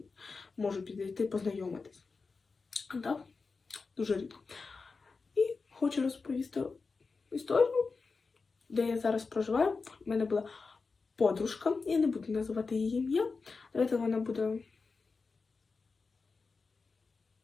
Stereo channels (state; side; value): quieter; right; 4.4 dB